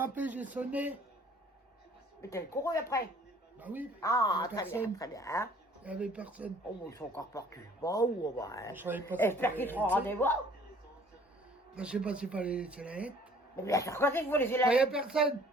j'ai sonné. Mais t'as couru après. Bah oui. Ah, Il y avait très bien, personne. très bien. Hein. Il n'y avait personne. Oh, ils sont encore partis. Bon, bah, hein. Je savais pas. J'espère qu'ils seront rendez-vous. Bah, je sais pas s'il fallait laisser la lettre. Mais bien sûr, quand c'est que vous laissez Il la n'y a lettre. personne.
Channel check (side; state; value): both; normal; correlation 0.55